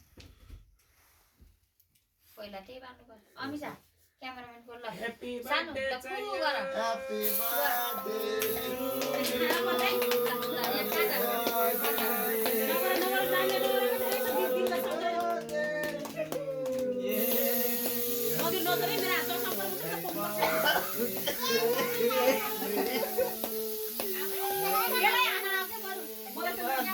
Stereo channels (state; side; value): identical; both; correlation 1.00